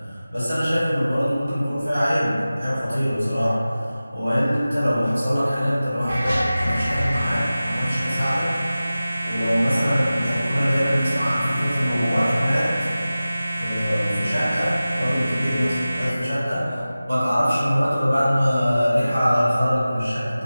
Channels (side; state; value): both; inverted; correlation -0.96